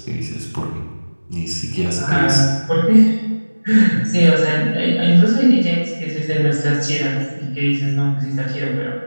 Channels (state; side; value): inverted; both; correlation -1.00